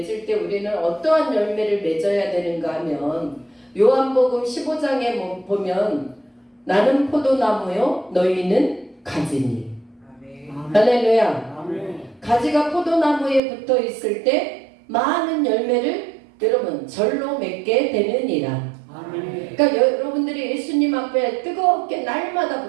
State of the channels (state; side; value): drops out; left; at 13.4 s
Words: 때 우리는 어떠한 열매를 맺어야 되는가 하면 요한복음 15장에 보면 나는 포도나무요 너희는 가지니. 할렐루야. 아멘. 가지가 포도나무에 붙어 있을 때 많은 열매를 여러분 절로 맺게 되느니라. 아멘. 그러니까 여러분들이 예수님 앞에 뜨겁게 날마다